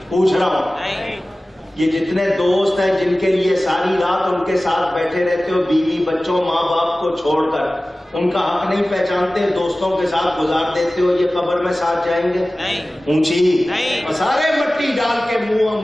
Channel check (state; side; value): normal; both; correlation 0.97